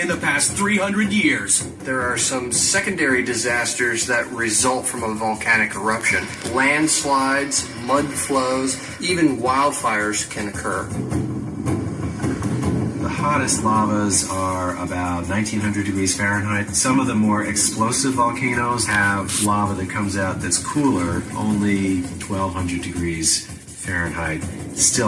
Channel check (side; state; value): both; identical; correlation 1.00